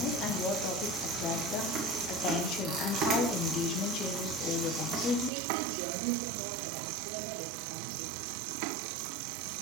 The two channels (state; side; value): drops out; left; at 5.3 s